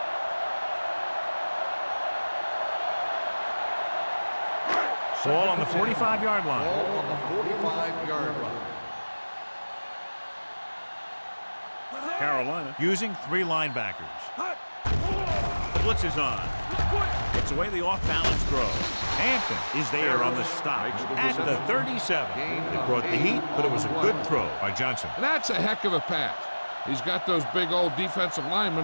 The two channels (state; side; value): inverted; both; correlation -1.00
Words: Ball on the 45-yard line. Ball on the 45-yard line. Carolina using 3 linebackers. The blitz is on. Gets away the off-balance throw. Hampton is there on the stop at the 37. They brought the heat, but it was a good throw by Johnson. That's a heck of a pass. He's got those big old defensive